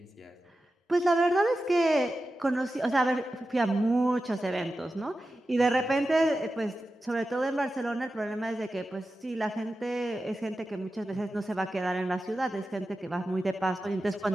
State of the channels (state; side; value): normal; both; correlation 0.92